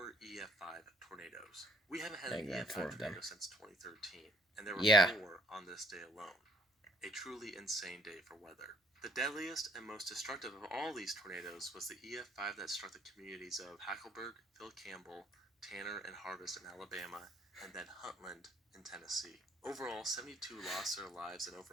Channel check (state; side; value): normal; both; correlation 0.61